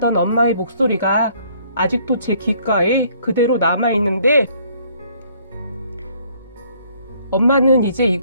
엄마의 목소리가 아직도 제 귓가에 그대로 남아있는데 엄마는 이제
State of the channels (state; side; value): inverted; both; correlation -0.62